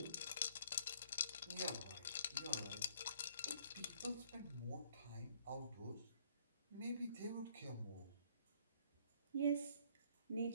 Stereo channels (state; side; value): inverted; both; correlation -0.61